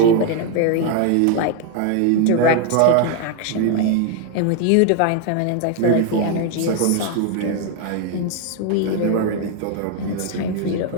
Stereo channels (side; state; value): both; different; correlation 0.00